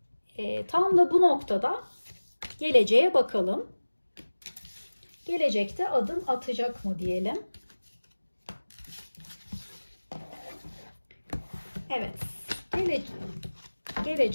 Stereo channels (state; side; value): inverted; both; correlation -1.00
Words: Tam da bu noktada geleceğe bakalım. Gelecekte adım atacak mı diyelim. Evet.